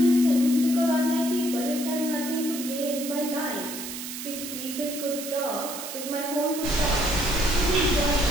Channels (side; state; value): right; noise; hiss, 8 dB below the sound